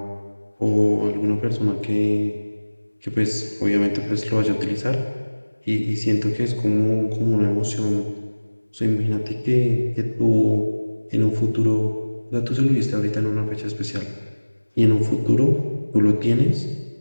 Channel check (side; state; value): both; inverted; correlation -1.00